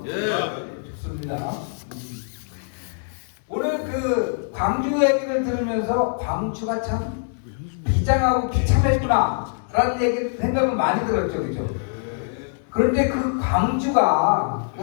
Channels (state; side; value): silent; right; digital silence